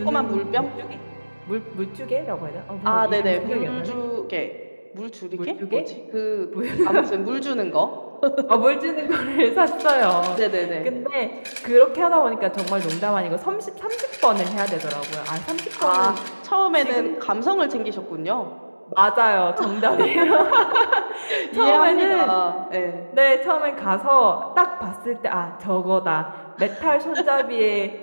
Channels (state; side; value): inverted; both; correlation -1.00